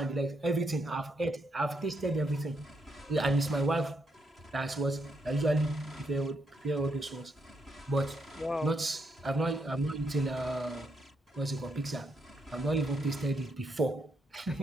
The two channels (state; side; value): normal; both; correlation 0.78